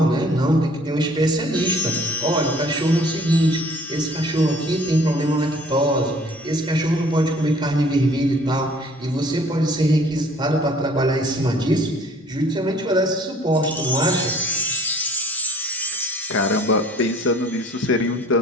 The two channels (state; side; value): normal; both; correlation 0.54